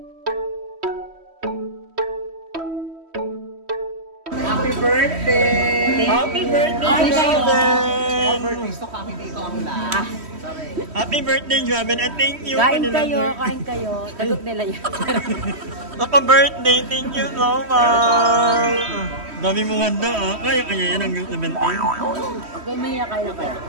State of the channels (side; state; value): left; late; 3.1 ms